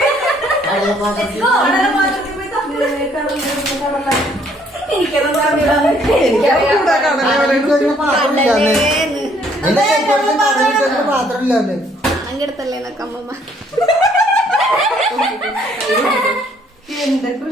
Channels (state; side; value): normal; both; correlation 0.64